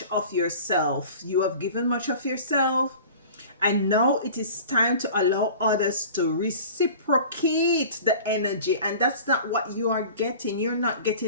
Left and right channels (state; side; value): inverted; both; correlation -0.41